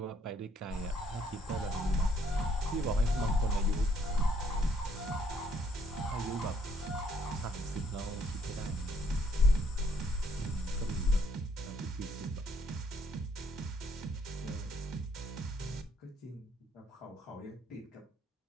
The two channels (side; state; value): both; normal; correlation 0.67